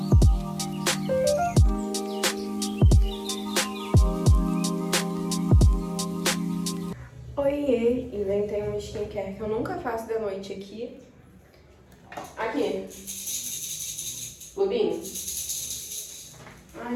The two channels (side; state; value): both; identical; correlation 1.00